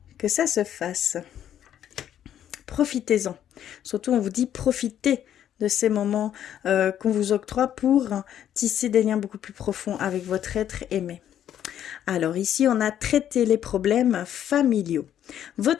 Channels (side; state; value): right; quieter; 10.4 dB